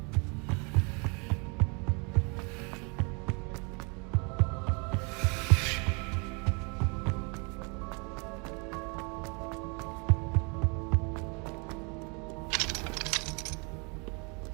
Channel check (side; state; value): left; quieter; 32.7 dB